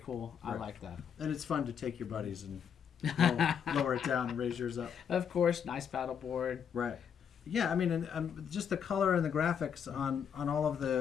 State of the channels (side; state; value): right; quieter; 7.7 dB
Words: Right. I like that. And it's fun to take your buddies and lower it down and raise yours up. Of course, nice paddle board. Right. Yeah, I mean, and just the color and the graphics on all of